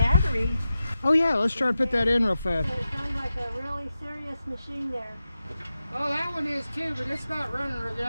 Oh yeah, let's try to put that in real fast. It sounds like a really serious machine there. Oh, that one is too, but it's not running real good.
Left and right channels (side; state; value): both; inverted; correlation -0.91